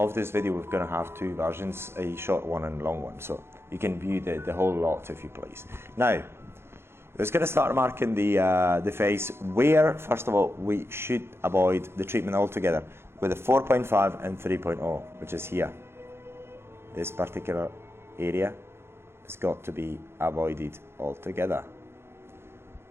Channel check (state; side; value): late; left; 0.12 ms